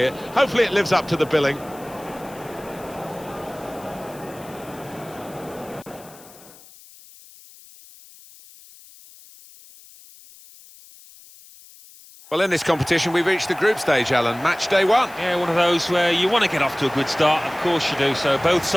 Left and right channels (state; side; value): noise; left; hiss, 22 dB below the sound